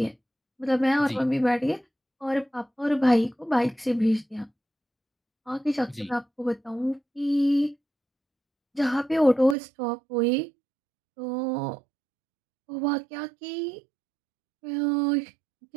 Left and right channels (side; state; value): left; drops out; at 9.6 s